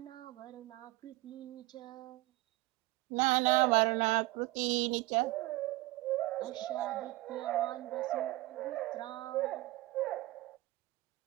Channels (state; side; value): quieter; left; 19.2 dB